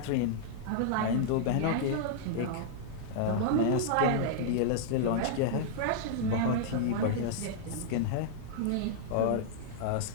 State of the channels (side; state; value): both; different; correlation -0.01